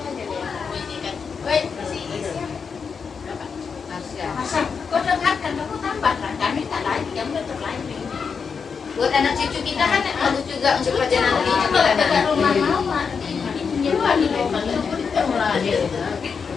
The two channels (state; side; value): quieter; right; 5.8 dB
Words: Kau dengarkan, kamu tambahlah. Kami tak lagi, yang udah terlanjur. Buat anak cucu kita kan bagus juga untuk kerja nanti. Itu kalau dekat rumah mama, nyewa di rumah itu mulai.